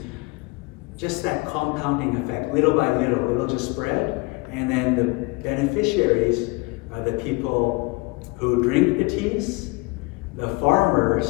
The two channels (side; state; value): right; quieter; 26.1 dB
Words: just that compounding effect, little by little, it'll just spread, and then the beneficiaries are the people who drink the teas, the